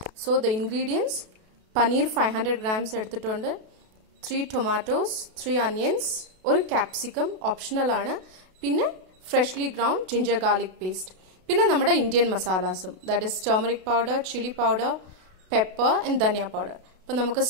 So the ingredients: paneer 500 grams എടുത്തിട്ടുണ്ട്, 3 tomatoes, 3 onions, ഒരു ക്യാപ്സിക്കം ഓപ്ഷണൽ ആണ്, പിന്നെ freshly ground ginger garlic paste, പിന്നെ നമ്മുടെ ഇന്ത്യൻ മസാലാസും, that is turmeric powder, chilli powder, pepper and dhania powder. അപ്പൊ നമുക്ക്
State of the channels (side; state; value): left; late; 32 ms